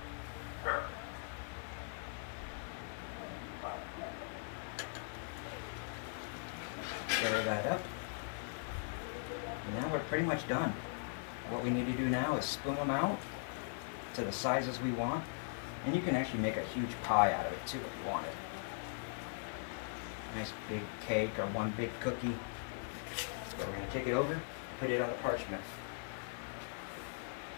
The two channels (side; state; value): right; silent; digital silence